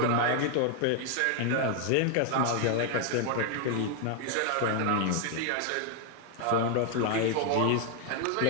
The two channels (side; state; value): both; different; correlation 0.00